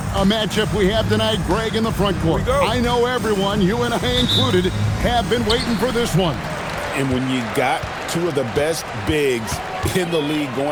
a matchup we have tonight, Greg, in the front court. I know everyone, you and I included, have been waiting for this one. And when you got two of the best bigs in the league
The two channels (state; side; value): identical; both; correlation 1.00